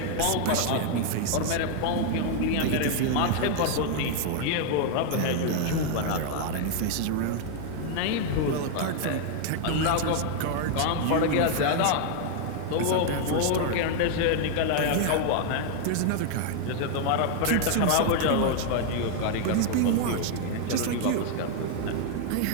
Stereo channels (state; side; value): different; both; correlation 0.00